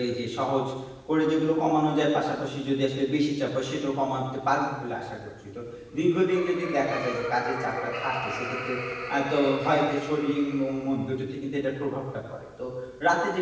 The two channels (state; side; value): identical; both; correlation 1.00